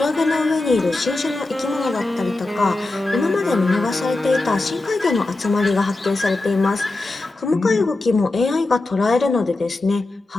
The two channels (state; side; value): quieter; right; 3.0 dB